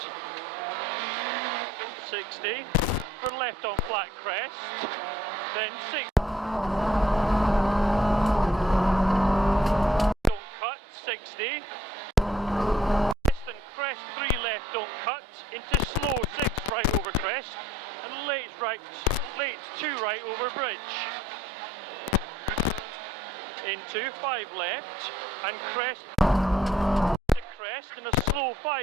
60 for left on flat crest, then 6 don't cut, 60 crest and crest 3 left don't cut, into slow 6 right over crest, and late 2 right over bridge, into 5 left and crest to crest, and a slow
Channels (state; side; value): normal; both; correlation 0.64